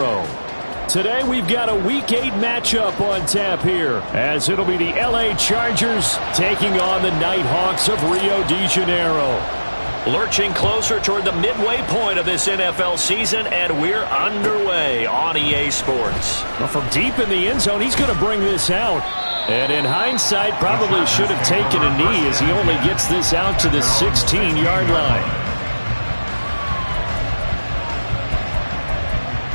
Today we've got a Week 8 matchup on tap here, as it'll be the LA Chargers taking on the Nighthawks of Rio de Janeiro. Lurching closer toward the midway point of this NFL season, and we're underway on EA Sports. Well, from deep in the end zone, he's going to bring this out. And in hindsight, probably should have taken a knee, as he only gets this out to the 16-yard line.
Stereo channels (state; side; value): inverted; both; correlation -1.00